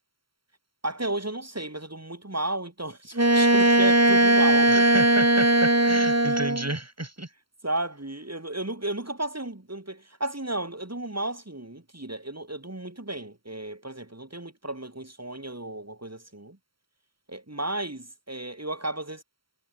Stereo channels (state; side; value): late; left; 0.74 ms